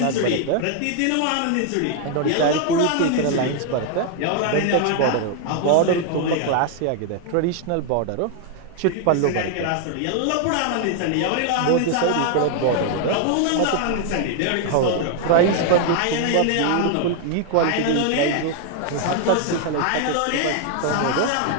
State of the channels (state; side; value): different; both; correlation 0.00